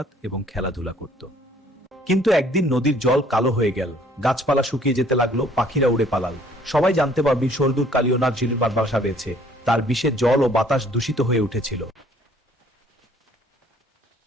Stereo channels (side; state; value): both; normal; correlation 0.59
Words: এবং খেলাধুলা করত। কিন্তু একদিন নদীর জল কালো হয়ে গেল, গাছপালা শুকিয়ে যেতে লাগলো, পাখিরা উড়ে পালাল। সবাই জানতে পারবি সর্দুর কালিওনাথ ঝিলির বাসা পেয়েছে। তার বিষে জল ও বাতাস দূষিত হয়ে উঠেছিল।